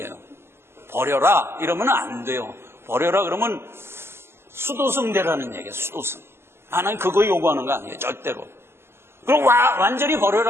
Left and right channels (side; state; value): left; late; 0.12 ms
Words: 버려라 이러면 안 돼요. 버려라 그러면 수도승대라는 얘기예요. 수도승. 하나님 그거 요구하는 거 아니에요. 절대로. 그럼 완전히